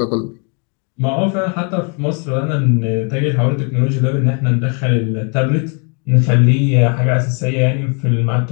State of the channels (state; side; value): quieter; right; 37.3 dB